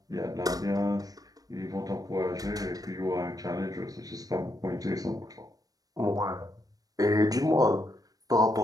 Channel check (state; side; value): late; left; 0.18 ms